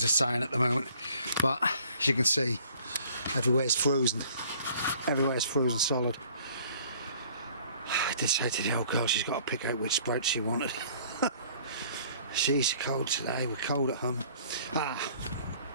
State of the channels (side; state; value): both; inverted; correlation -0.56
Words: of sun at the moment, but as you can see, everywhere's frozen. Everywhere's frozen solid. I did say to the old girl she's got to pick out which sprouts she wanted. She's cold today, we're cold at home.